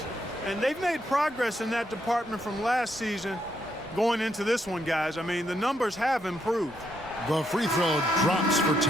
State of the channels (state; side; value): normal; both; correlation 0.77